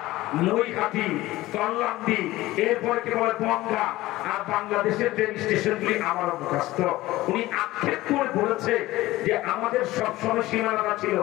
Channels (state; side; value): quieter; right; 17.6 dB